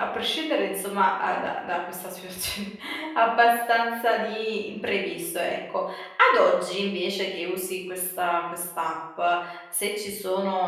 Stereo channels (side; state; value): both; identical; correlation 1.00